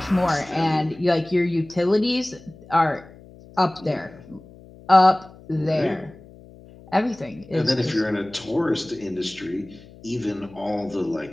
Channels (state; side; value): noise; left; hum, 21 dB below the sound